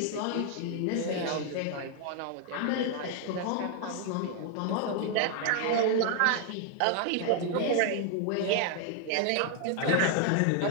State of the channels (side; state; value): both; different; correlation 0.00